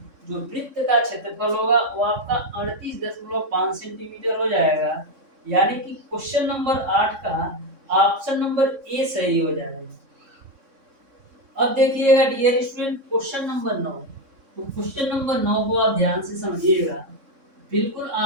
जो वृत्त का क्षेत्रफल होगा वो आपका 38.5 सेंटीमीटर हो जाएगा। यानी कि क्वेश्चन नंबर 8 का ऑप्शन नंबर ए सही हो जाएगा। अब देखिएगा डियर स्टूडेंट क्वेश्चन नंबर 9। तो क्वेश्चन नंबर 9 को आप ध्यान से समझिएगा, बिल्कुल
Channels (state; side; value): late; left; 3.6 ms